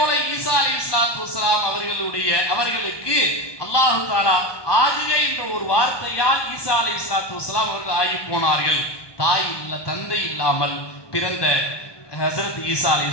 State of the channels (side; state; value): right; late; 1.2 ms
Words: ஈசா அலைஹிஸ்ஸலாத்து வஸ்ஸலாம் அவர்களுக்கு அல்லாஹ் தஆலா ஆகுக என்ற ஒரு வார்த்தையால் ஈசா அலைஹிஸ்ஸலாத்து வஸ்ஸலாம் அவர்கள் ஆகி போனார்கள். தாய் இல்ல, தந்தை இல்லாமல் பிறந்த ஹஸரத் ஈசா